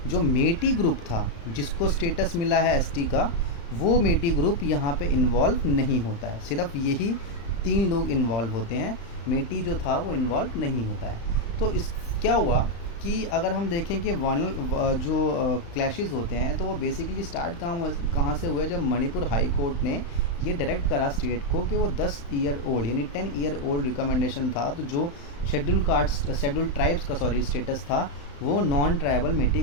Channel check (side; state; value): right; late; 35 ms